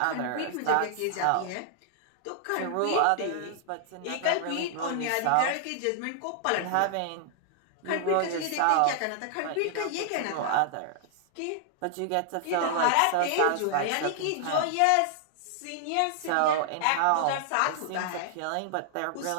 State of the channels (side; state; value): both; different; correlation -0.01